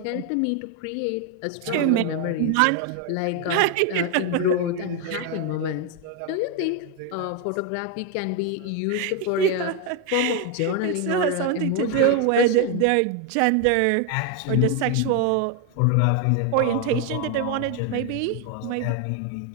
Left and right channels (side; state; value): both; different; correlation 0.01